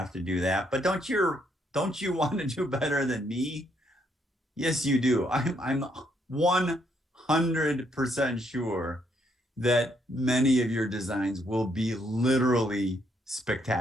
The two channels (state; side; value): normal; both; correlation 0.73